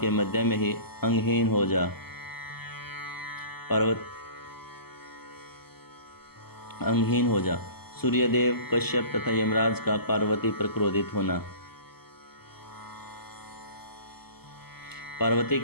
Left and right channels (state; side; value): late; right; 0.96 ms